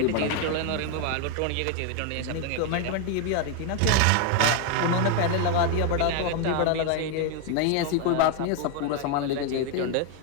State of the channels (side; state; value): both; different; correlation 0.01